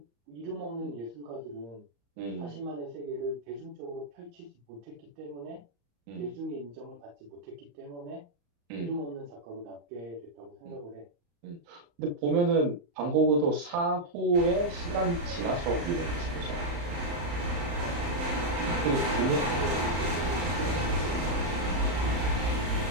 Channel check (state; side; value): late; left; 35 ms